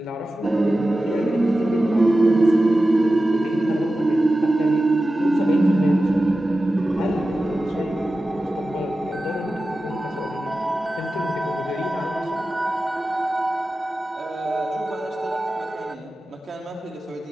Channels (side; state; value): both; normal; correlation 0.94